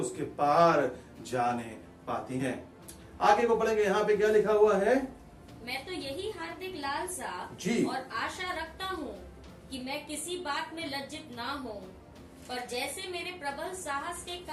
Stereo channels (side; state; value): both; identical; correlation 1.00